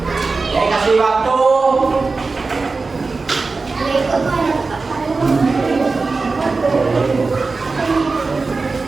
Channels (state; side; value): quieter; left; 4.0 dB